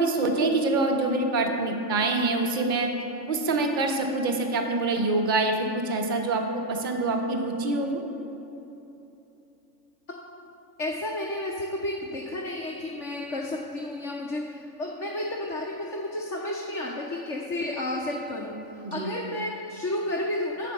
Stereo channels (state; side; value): late; right; 3.4 ms